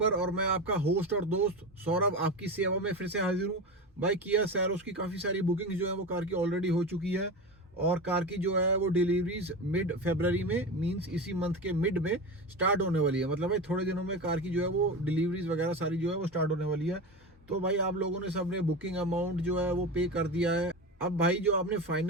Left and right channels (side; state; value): both; normal; correlation 0.24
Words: और मैं आपका होस्ट और दोस्त सौरभ आपकी सेवा में फिर से हाजिर हूं। भाई किया सैरोस की काफ़ी सारी बुकिंग जो है वो कार की ऑलरेडी हो चुकी है और कार की जो है वो डिलीवरीज मिड फरवरी में मींस इसी मंथ के मिड में स्टार्ट होने वाली है। मतलब भाई थोड़े दिनों में कार की जो है वो डिलीवरीज वगैरह सारी जो है वो स्टार्ट होने वाली है। तो भाई आप लोगों ने सबने बुकिंग अमाउंट जो है वो पे कर दिया है। अब भाई जो आपने